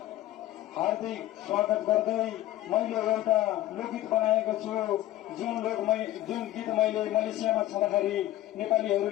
हार्दिक स्वागत गर्दै मैले एउटा लोकगीत बनाएको छु। जुन गीत मैले मलेसियामा छँदाखेरि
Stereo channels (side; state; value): right; quieter; 14.6 dB